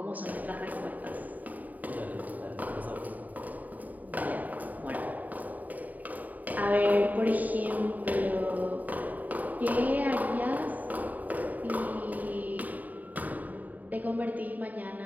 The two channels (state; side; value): late; left; 0.078 ms